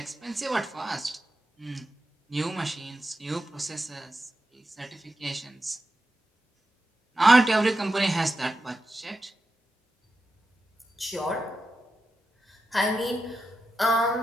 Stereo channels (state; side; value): normal; both; correlation 0.90